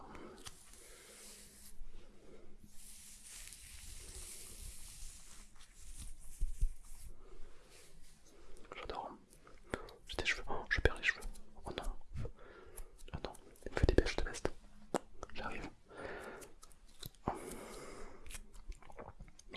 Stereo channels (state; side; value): identical; both; correlation 1.00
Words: J'adore. J'ai des cheveux. Oh, je perds les cheveux. Oh non. Oh non. Il me fait des bêches de veste. J'arrive. Oh.